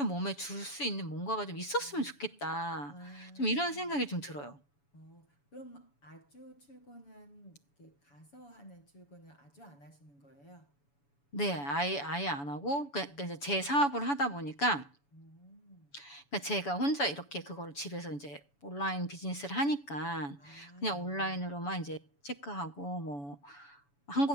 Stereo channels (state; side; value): late; right; 7.0 ms